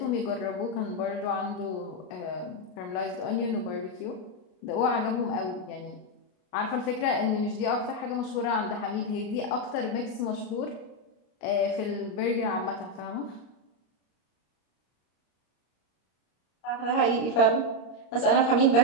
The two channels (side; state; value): right; late; 33 ms